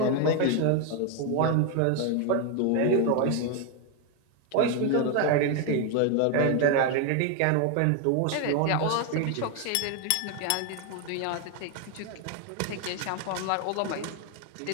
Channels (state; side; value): different; both; correlation 0.01